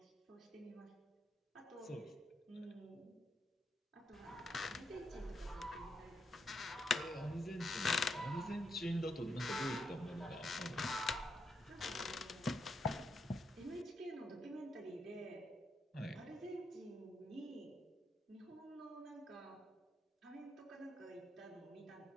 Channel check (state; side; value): normal; both; correlation 0.80